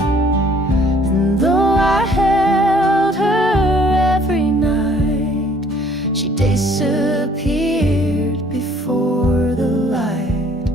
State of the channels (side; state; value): both; normal; correlation 0.58